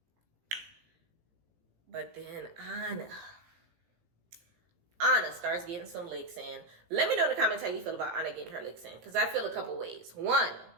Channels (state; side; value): late; left; 17 ms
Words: Anna starts getting some licks in. Let me know in the comments how you feel about Anna getting her licks in, because I feel a couple ways. One,